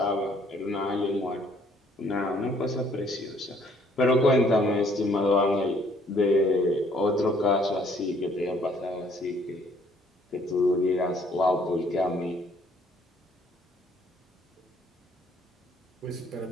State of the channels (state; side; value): normal; both; correlation 0.62